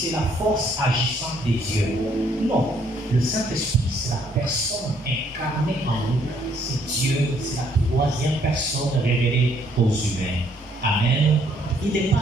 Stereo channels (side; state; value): both; normal; correlation 0.67